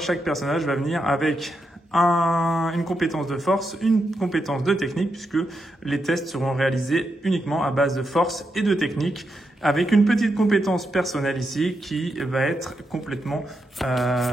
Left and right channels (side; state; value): both; normal; correlation 0.84